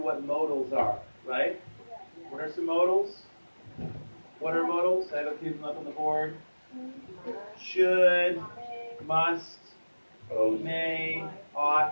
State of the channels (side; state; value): both; inverted; correlation -1.00